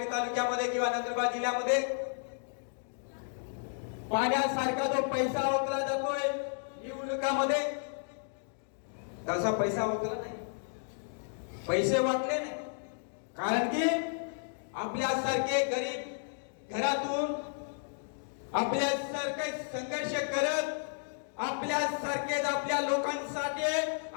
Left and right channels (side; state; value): right; silent; digital silence